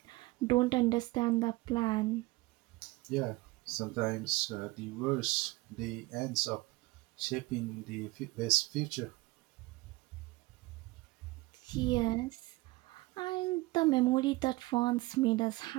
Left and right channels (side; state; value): left; quieter; 21.5 dB